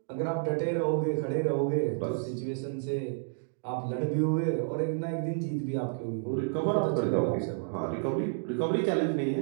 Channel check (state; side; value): silent; left; digital silence